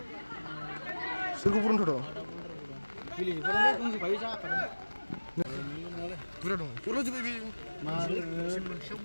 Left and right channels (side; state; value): both; inverted; correlation -1.00